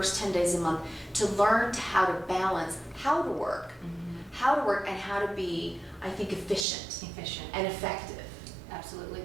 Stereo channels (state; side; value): drops out; left; at 6.7 s